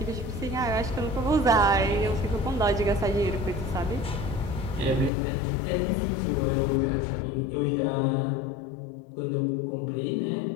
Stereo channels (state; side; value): drops out; right; at 5.1 s